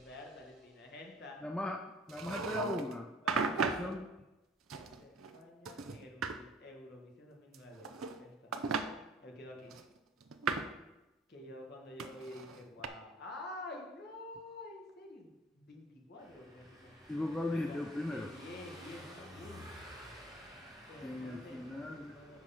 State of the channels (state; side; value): normal; both; correlation 0.52